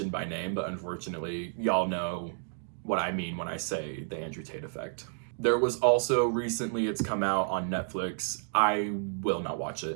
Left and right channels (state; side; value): silent; left; digital silence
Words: by name, but unfortunately, y'all know what I mean when I say the Andrew Tate effect. There was also recently, it's come out on Netflix. I will not watch